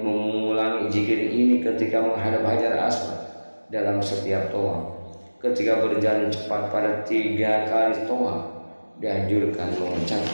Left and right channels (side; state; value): both; inverted; correlation -1.00